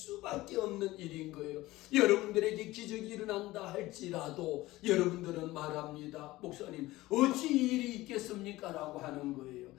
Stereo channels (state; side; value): quieter; right; 18.2 dB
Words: 없는 일인 거예요. 여러분들에게 기적이 일어난다 할지라도 여러분들은 말합니다. 목사님, 어찌 일이 있겠습니까? 라고 하는 거예요.